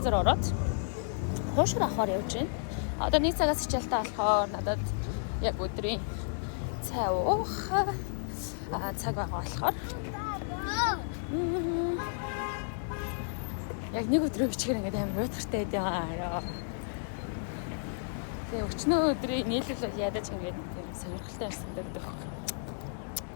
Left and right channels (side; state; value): right; silent; 56 dB below the other